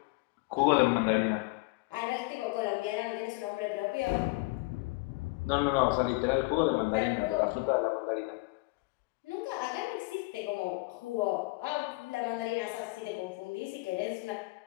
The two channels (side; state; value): right; quieter; 25.6 dB